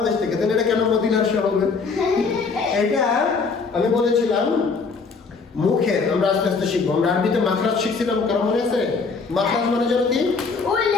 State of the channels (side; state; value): right; quieter; 4.7 dB